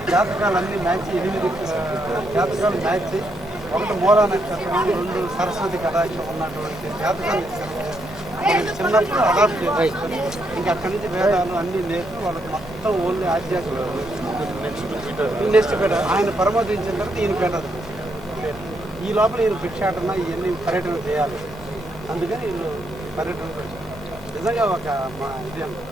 జాతకాలన్నీ మ్యాచ్, 8 జాతకాలు మ్యాచ్. ఒకటి మూలా నక్షత్రం, 2 సరస్వతి కటాక్షం ఉన్నటువంటి జాతకాలు చిన్నప్పుడు అడాప్ట్ చేసుకొని ఇంకా అక్కడి నుంచి వేదాలు అన్నీ నేర్పి వాళ్ళకి మొత్తం ఓన్లీ ఆధ్యాత్మిక నెక్స్ట్ పేట ఆయన పరమోదించిన తర్వాత ఈయన పేటది. ఈ లోపల ఈయన భిక్షాటన ఇవన్నీ పర్యటన చేయాలి. అందుకని వీళ్ళు పర్యటన నిజంగా ఒక మా ఇది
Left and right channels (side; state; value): left; noise; rumble, 19 dB below the sound